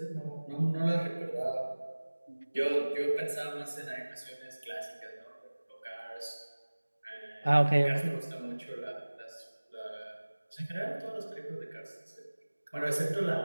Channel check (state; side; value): inverted; both; correlation -1.00